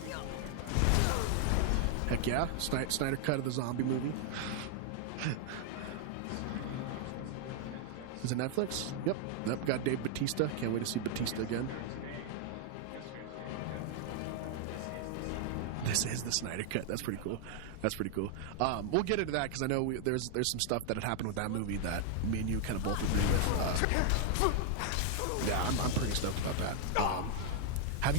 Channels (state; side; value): different; both; correlation 0.00